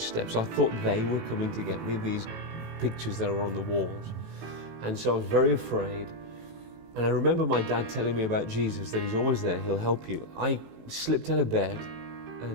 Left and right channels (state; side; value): late; left; 18 ms